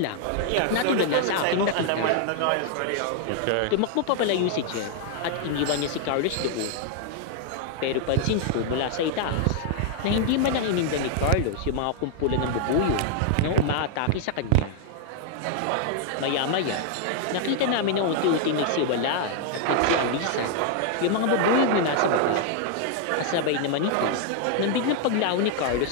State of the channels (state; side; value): different; both; correlation 0.00